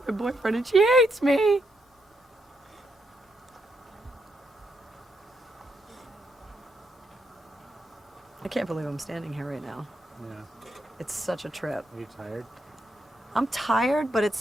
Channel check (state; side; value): normal; both; correlation 0.79